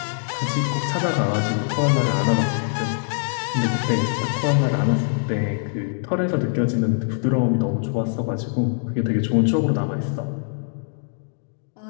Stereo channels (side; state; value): right; silent; 63 dB below the other